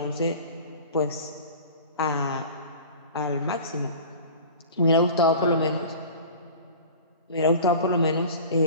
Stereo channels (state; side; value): inverted; both; correlation -0.40